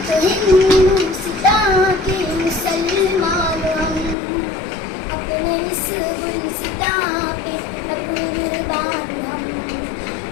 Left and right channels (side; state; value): right; drops out; at 4.2 s